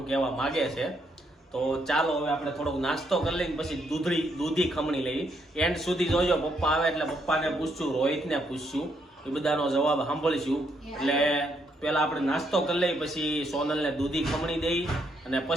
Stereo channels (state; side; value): normal; both; correlation 0.74